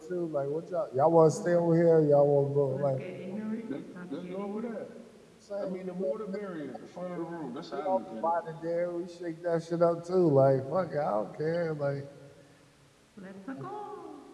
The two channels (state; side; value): identical; both; correlation 1.00